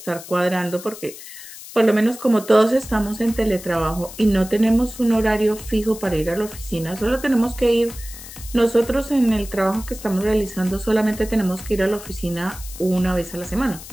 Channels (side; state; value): left; noise; hiss, 15 dB below the sound